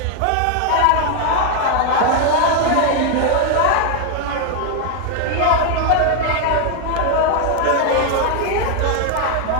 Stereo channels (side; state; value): both; different; correlation 0.00